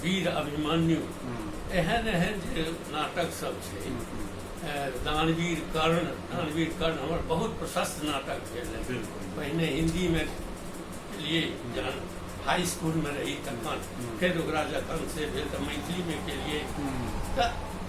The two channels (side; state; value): both; identical; correlation 1.00